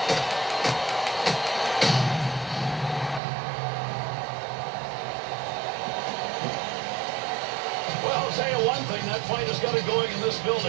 Well, I'll tell you one thing, that fight has got it going in this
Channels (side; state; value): left; drops out; at 3.2 s